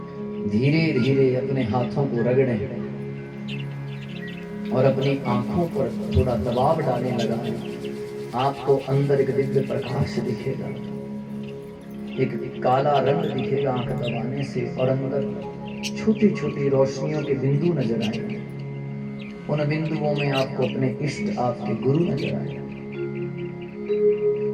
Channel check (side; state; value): both; identical; correlation 1.00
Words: धीरे धीरे अपने हाथों को रगड़ें और अपनी आंखों पर थोड़ा दबाव डालने लगा। आपको अंदर एक दिव्य प्रकाश दिखेगा, एक काला रंग दिखेगा आंख दबाने से, और अंदर छोटी छोटी रोशनियों के बिंदु नजर आएंगे। उन बिंदुओं में आपको अपने इष्ट, आपके गुरु नजर आएंगे।